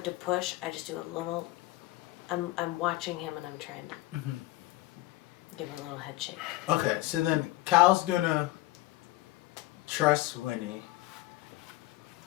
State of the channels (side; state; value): right; quieter; 17.9 dB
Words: to push, I just do a little... I'm watching him, and I'm trying to give a little head shake. Okay, so then Cal's gonna trust Winnie,